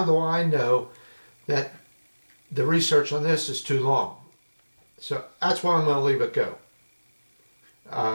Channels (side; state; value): both; inverted; correlation -1.00